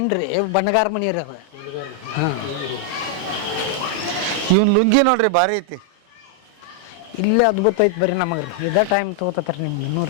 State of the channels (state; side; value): normal; both; correlation -0.01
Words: ಬಣ್ಣಗಾರ ಮನಿ ರೀ ಅದು. ಹಾಂ ಇವನ್ ಲುಂಗಿ ನೋಡ್ರಿ ಭಾರಿ ಐತಿ. ಇಲ್ಲೇ ಅದ್ಭುತ ಐತಿ ಬರ್ರಿ ನಮಗ್ರಿ. ಇದ ಟೈಮ್ ತಗೋತಾರ ನಿಮ್ಗೆ ಇನ್ನೂ